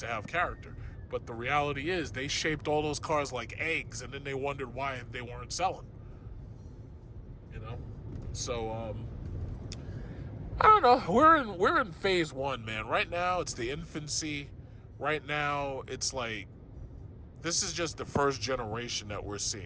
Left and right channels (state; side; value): identical; both; correlation 1.00